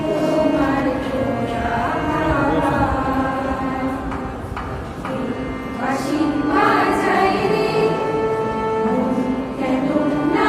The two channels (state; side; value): identical; both; correlation 1.00